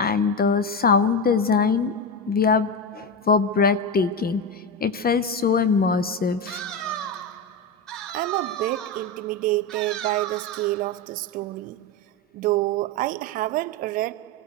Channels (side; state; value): both; normal; correlation 0.15